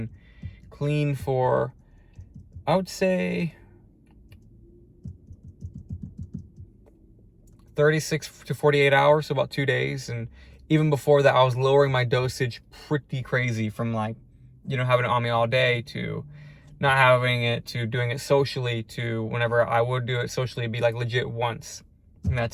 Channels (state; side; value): identical; both; correlation 1.00